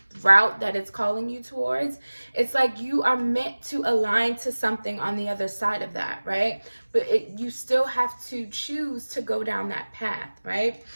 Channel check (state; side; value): inverted; both; correlation -1.00